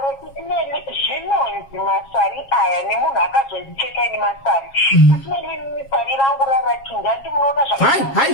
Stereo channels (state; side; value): late; right; 7.4 ms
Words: Sisimeli, zvinonzi masari aya nemunhu akazondicheka ini masari. Sisimeli, sari rangu rarachinja, ndimunoona